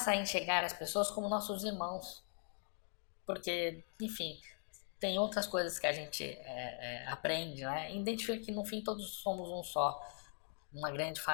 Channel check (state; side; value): silent; right; 51 dB below the other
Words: a enxergar as pessoas como nossos irmãos. Porque, enfim, tem outras coisas que a gente aprende, né? Identifica que no fim todos somos um só, uma grande